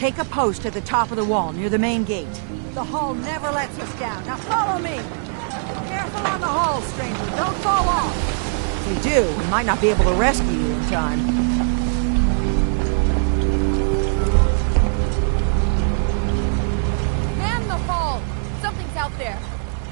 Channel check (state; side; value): silent; left; digital silence